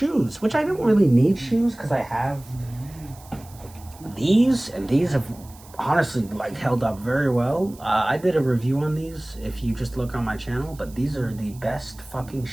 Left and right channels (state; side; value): noise; right; hiss, 23 dB below the sound